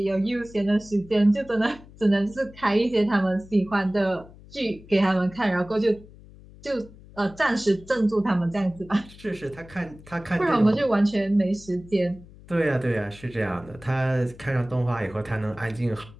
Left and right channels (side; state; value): left; noise; hum, 21 dB below the sound